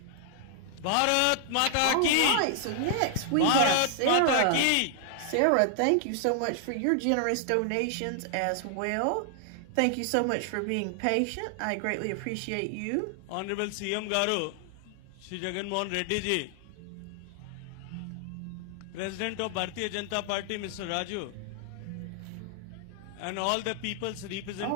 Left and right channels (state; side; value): different; both; correlation 0.00